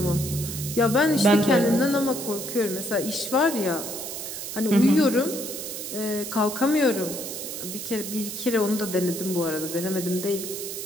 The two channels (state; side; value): noise; right; hiss, 7 dB below the sound